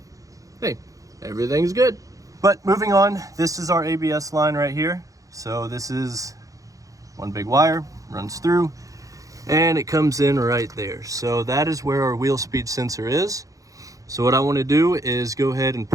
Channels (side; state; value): left; late; 0.16 ms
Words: hey, everything's good. But moving on, this is our ABS line right here. So this is one big wire, runs through, and it comes in right there. So that is where our wheel speed sensor is. So what I want to do is go ahead and